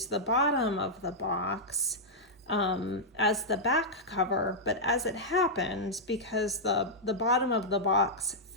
the bottom of the box as the back cover, but as it happened, because the bottom of the box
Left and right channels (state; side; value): normal; both; correlation -0.07